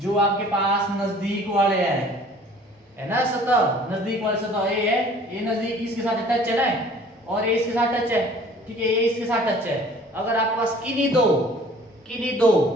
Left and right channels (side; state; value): both; normal; correlation 0.51